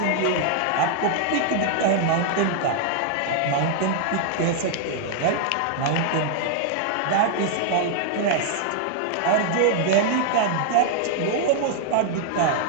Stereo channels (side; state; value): both; different; correlation 0.00